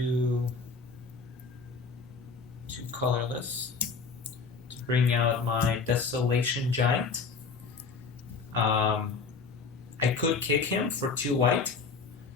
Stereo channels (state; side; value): quieter; right; 4.7 dB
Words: colorless to bring out my Desolation Giant. I could kick him for 2 white.